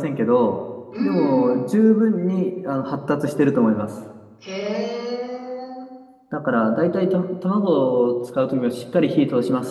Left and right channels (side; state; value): both; identical; correlation 1.00